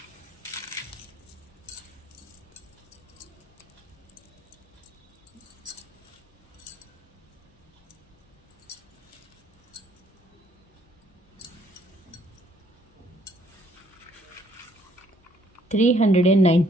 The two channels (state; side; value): normal; both; correlation 0.65